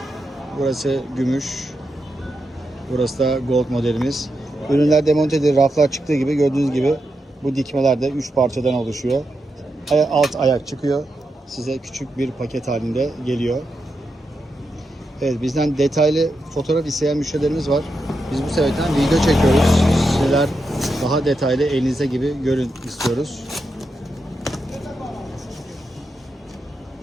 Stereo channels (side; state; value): both; normal; correlation 0.86